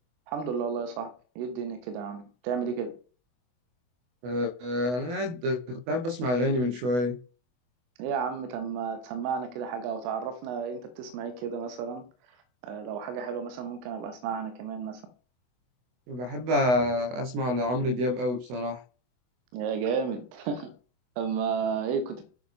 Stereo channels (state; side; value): late; left; 24 ms